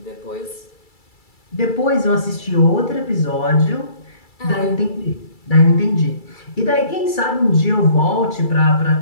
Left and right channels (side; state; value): right; late; 2.3 ms